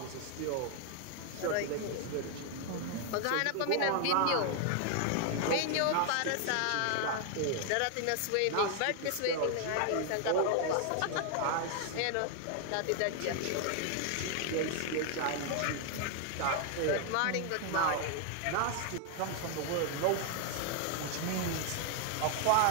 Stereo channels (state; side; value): different; both; correlation 0.00